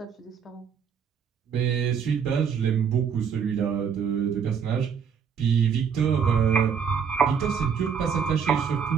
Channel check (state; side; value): quieter; left; 7.0 dB